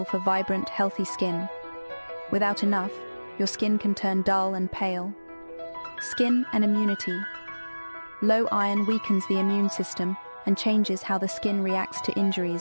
for vibrant, healthy skin. Without enough, your skin can turn dull and pale. Skin and immunity. Low iron weakens the immune system and changes how the skin reacts to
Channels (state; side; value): inverted; both; correlation -1.00